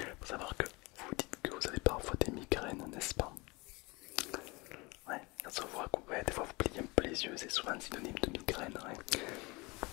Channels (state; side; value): quieter; right; 25.3 dB